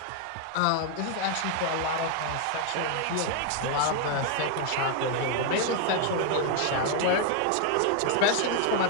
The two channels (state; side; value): different; both; correlation 0.00